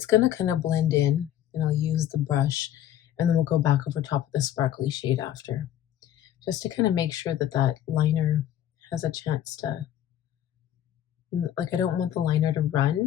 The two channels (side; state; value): right; quieter; 11.4 dB